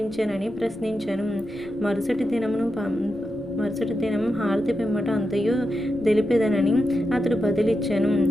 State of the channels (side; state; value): left; noise; rumble, 24 dB below the sound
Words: ప్రశ్నించెను. మరుసటి దినం హారతి పిమ్మట అంతయు తెలిపెదనని అతడు బదిలిచ్చెను.